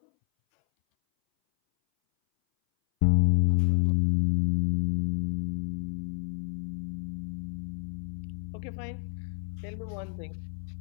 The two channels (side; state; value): right; silent; 58 dB below the other